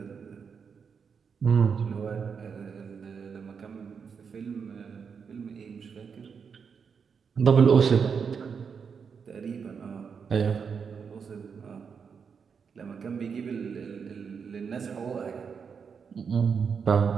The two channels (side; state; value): left; quieter; 6.2 dB